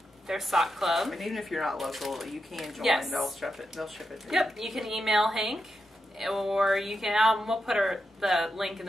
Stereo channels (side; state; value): both; normal; correlation 0.86